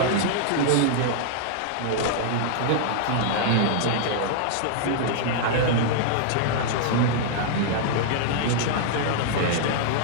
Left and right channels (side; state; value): both; different; correlation -0.01